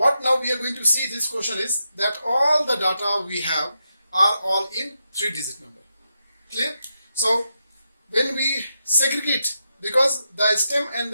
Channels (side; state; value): both; inverted; correlation -0.85